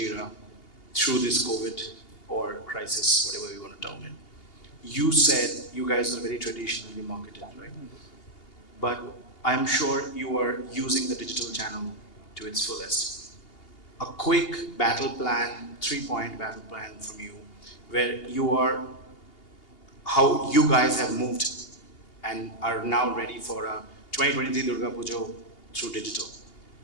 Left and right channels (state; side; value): late; right; 2.8 ms